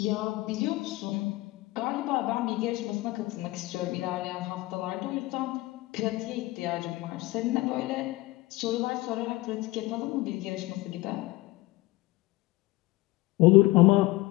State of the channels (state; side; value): quieter; right; 20.3 dB